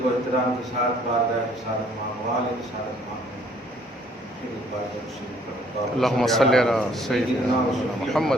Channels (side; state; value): both; normal; correlation 0.61